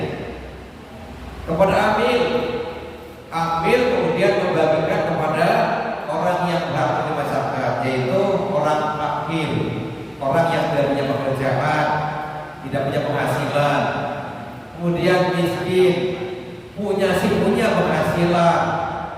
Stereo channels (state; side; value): identical; both; correlation 1.00